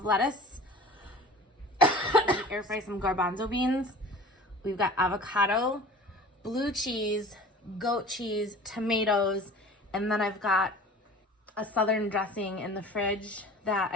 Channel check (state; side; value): normal; both; correlation 0.41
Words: lettuce, air fry some garbanzo beans. We've got avocado, blue cheese, goat cheese, tomatoes, and then I've got a southern dressing in the fridge that